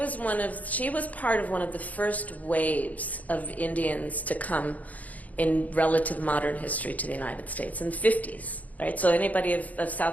part of one of the first waves of Indians to come in relative modern history to the United States in the 50s, right? So anybody of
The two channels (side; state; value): right; late; 0.075 ms